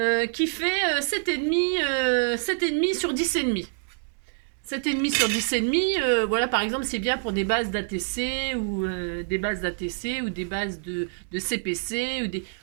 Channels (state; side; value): silent; left; digital silence